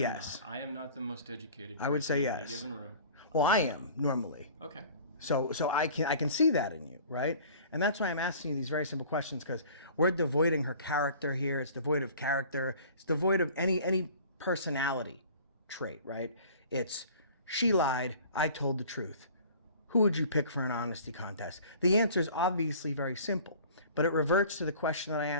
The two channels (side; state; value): both; inverted; correlation -0.46